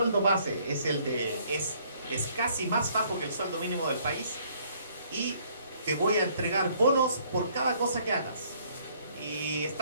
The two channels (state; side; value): inverted; both; correlation -0.63